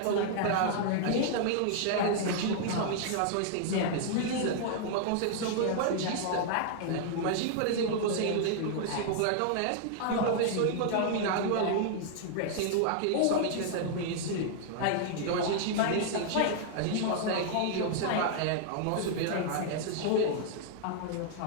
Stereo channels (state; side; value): different; both; correlation -0.01